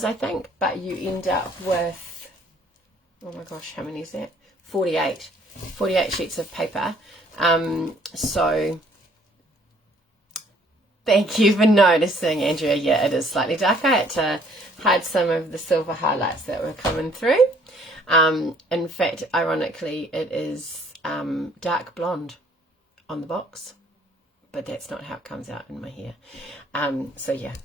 I think, but you end up with, oh my gosh, how many is that? 48 sheets of paper. So thank you for noticing, Andrea. Yeah, it is slightly dark. I had to hide some of the silver highlights that were coming through. In fact, ironically, it is dark blonde on the box, but that's not how it comes out in my hair. So yeah,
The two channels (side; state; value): both; normal; correlation 0.61